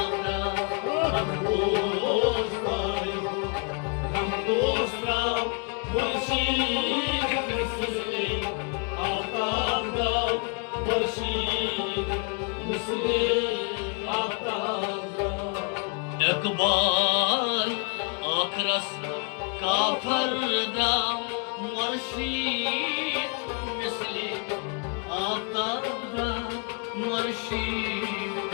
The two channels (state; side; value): quieter; right; 36.2 dB